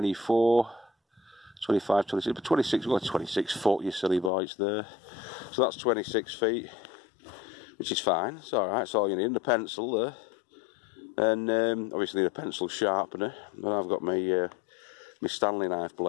25, 26, but 26, well, 26 foot, you silly boy, it's there. So that's 26 feet, which is fine, it's alright, it's all you need. And a pencil there, and obviously need a pencil sharpener, but I've got my Stanley knife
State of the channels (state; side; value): drops out; right; at 4.3 s